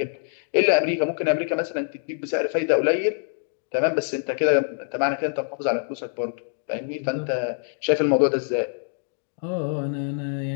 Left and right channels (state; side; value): silent; right; digital silence